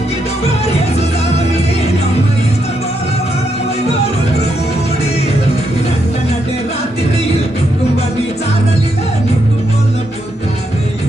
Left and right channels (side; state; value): both; normal; correlation 0.79